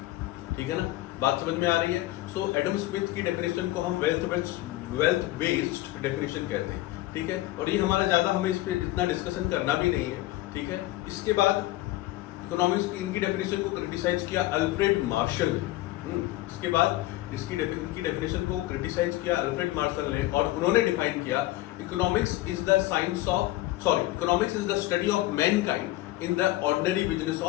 ठीक है ना? बात समझ में आ रही है? सो एडम स्मिथ की डेफिनेशन को हम वेल्थ बेस्ड डेफिनेशन कहते हैं। ठीक है, और ये हमारा ज्यादा, हमें इस पे इतना डिस्कशन करना भी नहीं है। ठीक है, इसके बाद इकोनॉमिक्स की इनकी डेफिनेशन को क्रिटिसाइज किया अल्फ्रेड मार्शल ने। इसके बाद इनकी डेफिनेशन को क्रिटिसाइज किया अल्फ्रेड मार्शल ने, और उन्होंने डिफाइन किया economics is the science of, economics is the study of mankind in the ordinary business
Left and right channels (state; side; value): quieter; right; 17.1 dB